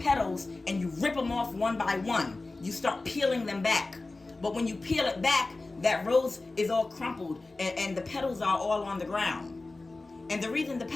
and you rip them off one by one. You start peeling them back. But when you peel it back, that rose is all crumpled and the petals are all on the ground. And the reason the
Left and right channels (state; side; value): quieter; right; 3.3 dB